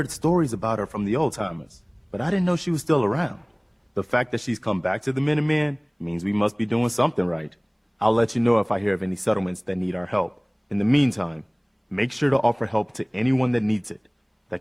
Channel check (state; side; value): identical; both; correlation 1.00